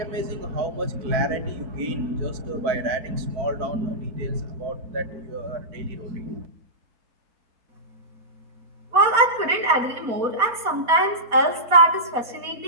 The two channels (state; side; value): late; left; 4.2 ms